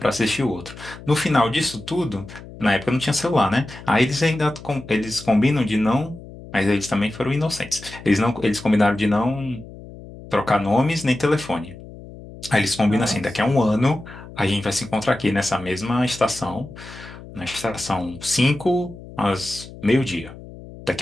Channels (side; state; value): left; noise; hum, 16 dB below the sound